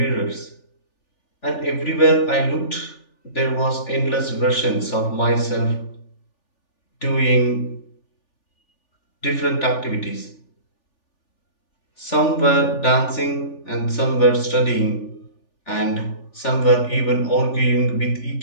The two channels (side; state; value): right; late; 3.4 ms